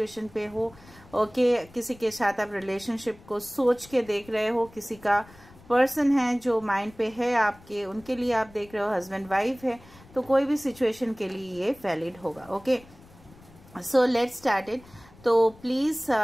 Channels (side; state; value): left; noise; rumble, 23 dB below the sound